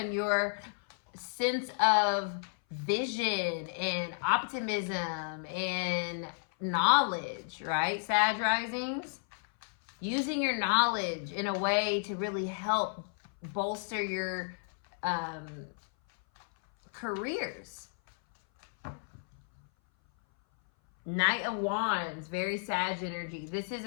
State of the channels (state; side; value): silent; right; 56 dB below the other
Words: your sense of vision and optimism and knowledge, right, Sag risings? Using your knowledge in a way to really help bolster your careers. Knight of Wands, very Sag energy. This is